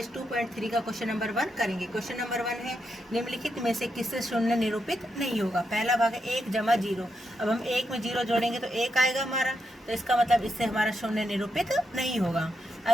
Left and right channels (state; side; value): normal; both; correlation 0.83